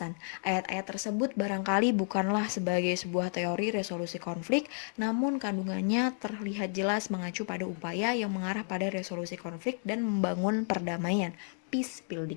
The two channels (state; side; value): silent; right; 57 dB below the other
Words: Ayat-ayat tersebut barangkali bukanlah sebagai sebuah teori resolusi konflik, namun kandungannya terlihat jelas mengacu pada upaya yang mengarah pada resolusi konflik dan membangun perdamaian, peace